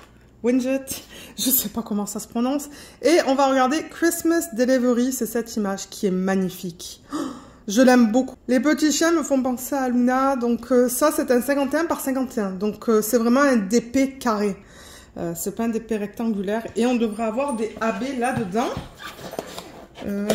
Je ne sais pas comment ça se prononce. Et on va regarder Christmas Delivery. C'est cette image qui est magnifique. Oh, je l'aime beaucoup. Les petits chiens me font penser à Luna. Donc ça, c'est un 51 par 51. Donc c'est vraiment un DP carré. C'est pas un DP rectangulaire. Et on devrait avoir des AB là-dedans.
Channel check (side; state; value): both; identical; correlation 1.00